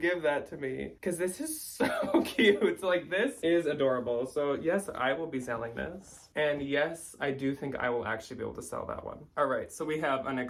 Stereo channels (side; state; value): both; identical; correlation 1.00